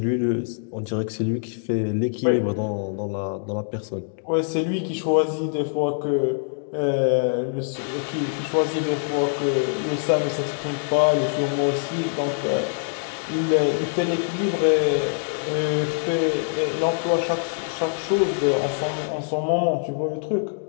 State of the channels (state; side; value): silent; right; digital silence